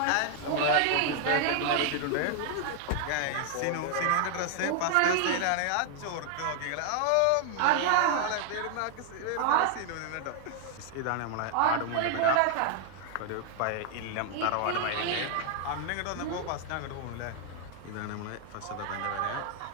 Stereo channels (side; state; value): both; different; correlation 0.00